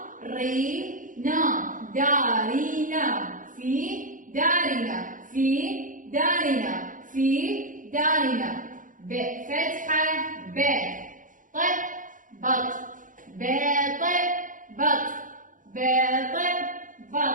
ري نا دارينا. في دارنا في دارنا في دارنا. ب فتحة ب ط بط ب ط بط ب ط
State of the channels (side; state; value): left; late; 0.38 ms